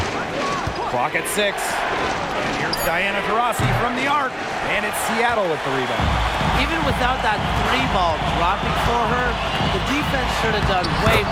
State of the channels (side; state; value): both; identical; correlation 1.00